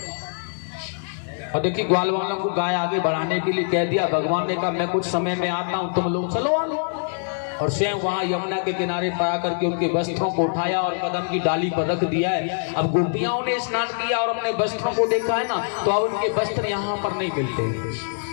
और देखिए ग्वाल वालों को गाय आगे बढ़ाने के लिए कह दिया। भगवान ने कहा मैं कुछ समय में आता हूं, तुम लोग चलो आने। और स्वयं वहां यमुना के किनारे पर आकर के उनके वस्त्रों को उठाया और कदम की डाली पर रख दिया है। अब गोपियाओं ने स्नान किया और अपने वस्त्रों को देखा है ना, तो अब उनके वस्त्र यहाँ पर नहीं मिलते।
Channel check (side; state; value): right; silent; digital silence